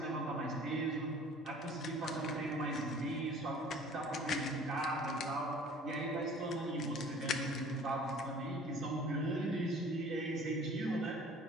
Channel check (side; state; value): both; normal; correlation 0.49